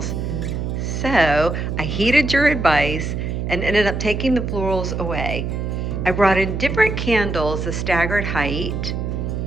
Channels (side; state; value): right; noise; hum, 3 dB below the sound